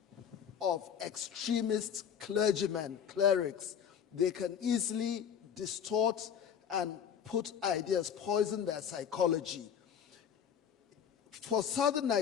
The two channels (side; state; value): right; quieter; 8.2 dB